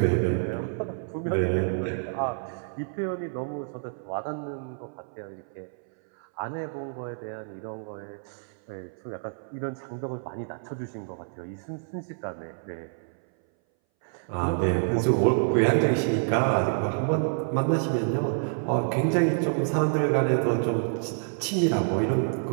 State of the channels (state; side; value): silent; left; 59 dB below the other